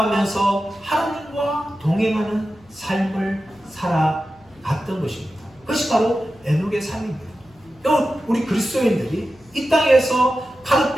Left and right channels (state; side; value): noise; left; hum, 29 dB below the sound